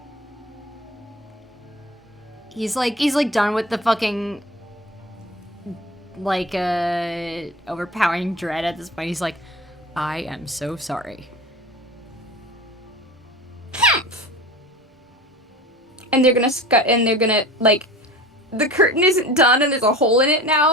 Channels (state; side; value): normal; both; correlation 0.36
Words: He's like done with the fucking like overpowering dread at this point. He's like, I am so sorry. And they're gonna like, the curtain isn't done and there's a hole in it